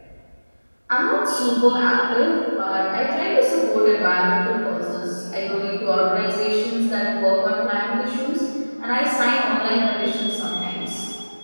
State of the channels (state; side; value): inverted; both; correlation -1.00